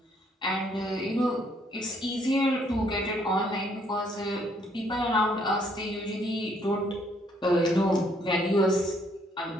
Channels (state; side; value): normal; both; correlation 0.67